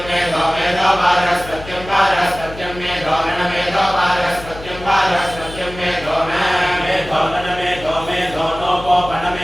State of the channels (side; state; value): left; noise; hum, 14 dB below the sound